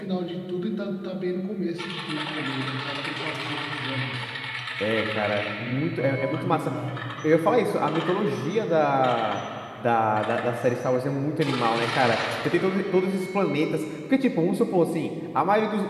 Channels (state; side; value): identical; both; correlation 1.00